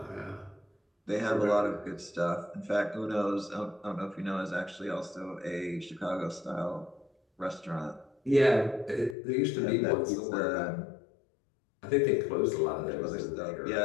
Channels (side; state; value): right; drops out; at 9.2 s